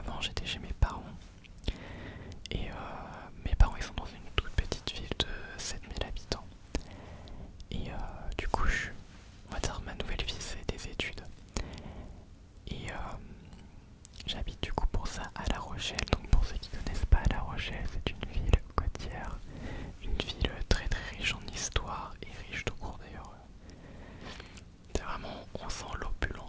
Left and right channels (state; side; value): identical; both; correlation 1.00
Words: j'étais chez mes parents. Et mes parents, ils sont dans une toute petite ville de 7000 habitants. Et du coup, on va dire, ma nouvelle vie, c'est des études. Et j'habite du coup pour ça à La Rochelle. Donc pour ceux qui connaissent pas La Rochelle, c'est une ville côtière, une ville très très riche en histoire et riche tout court d'ailleurs. C'est vraiment, on sent